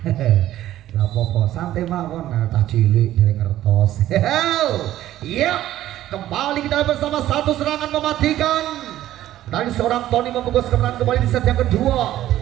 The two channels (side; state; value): left; quieter; 13.5 dB